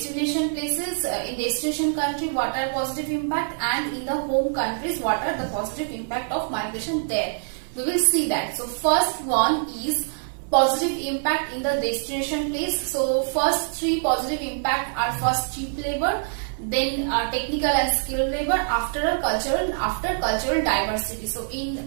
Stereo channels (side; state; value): left; silent; 62 dB below the other